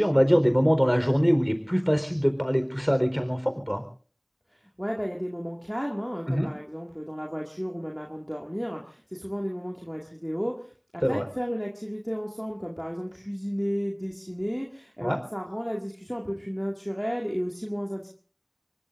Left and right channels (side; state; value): both; identical; correlation 1.00